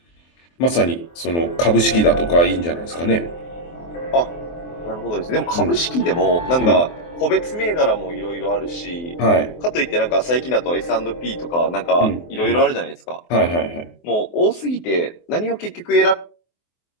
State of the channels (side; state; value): right; late; 23 ms